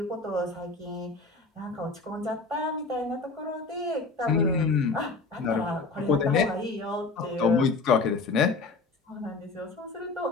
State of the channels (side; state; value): right; quieter; 3.8 dB